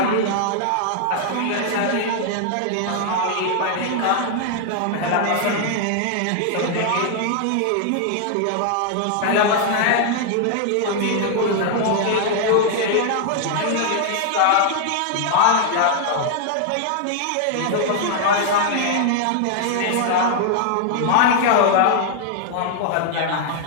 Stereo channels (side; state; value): both; different; correlation 0.00